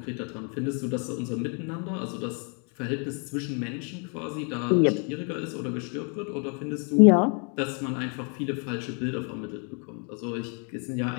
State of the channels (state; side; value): quieter; right; 38.6 dB